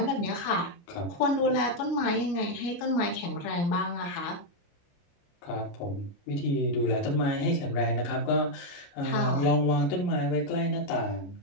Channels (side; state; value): right; late; 29 ms